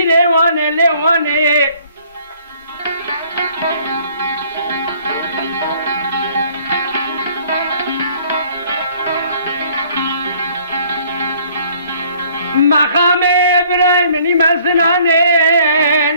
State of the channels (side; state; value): both; inverted; correlation -0.58